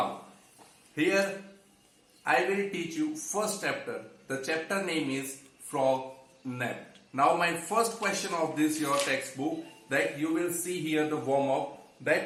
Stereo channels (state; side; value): identical; both; correlation 1.00